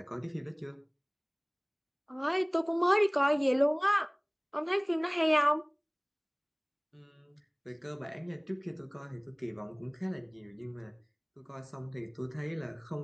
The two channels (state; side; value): identical; both; correlation 1.00